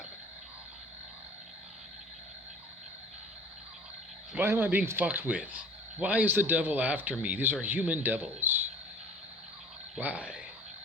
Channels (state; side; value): normal; both; correlation 0.45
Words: Why am I being fucked with? Why is the devil after me? These are human devils. Why?